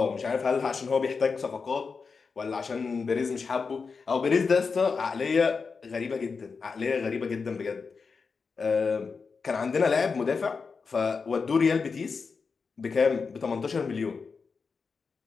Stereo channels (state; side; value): quieter; right; 5.0 dB